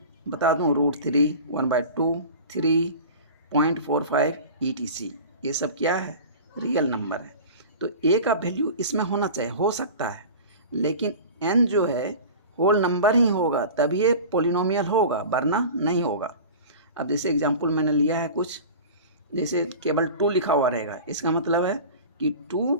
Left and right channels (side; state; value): both; inverted; correlation -0.36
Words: बता दूं, √3 1/2 3.45 ETC, ये सब क्या है, रियल नंबर है। तो ए का वैल्यू इसमें होना चाहिए, हो सकता है, लेकिन एन जो है होल नंबर ही होगा तभी ये पोलिनोमियल होगा, वरना नहीं होगा। अब जैसे एग्जांपल मैंने लिया है कुछ, जैसे केवल 2 लिखा हुआ रहेगा, इसका मतलब है कि